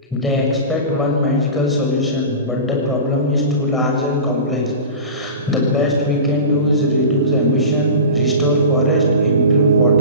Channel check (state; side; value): inverted; both; correlation -0.32